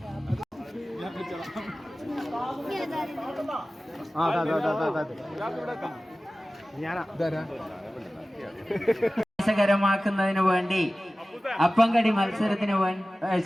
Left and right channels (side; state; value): both; normal; correlation 0.97